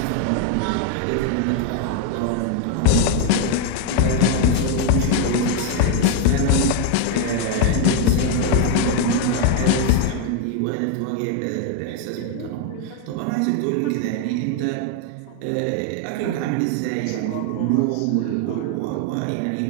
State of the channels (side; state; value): both; different; correlation 0.01